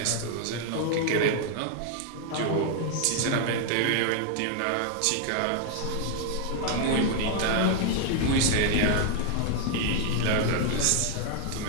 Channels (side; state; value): both; different; correlation 0.00